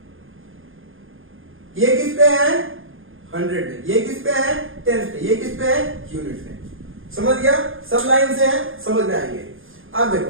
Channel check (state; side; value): late; left; 0.59 ms